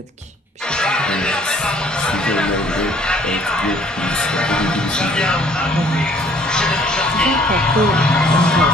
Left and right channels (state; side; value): normal; both; correlation 0.58